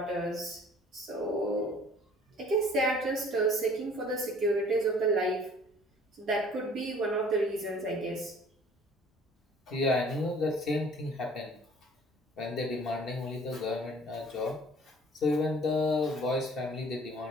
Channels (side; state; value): both; normal; correlation 0.52